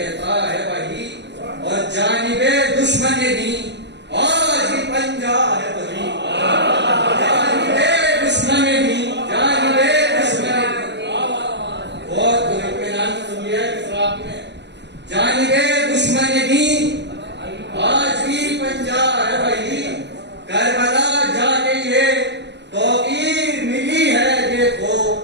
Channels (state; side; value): late; left; 0.51 ms